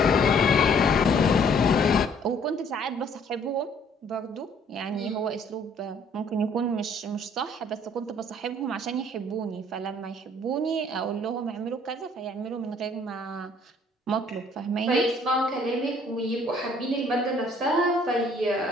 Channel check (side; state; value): both; normal; correlation 0.60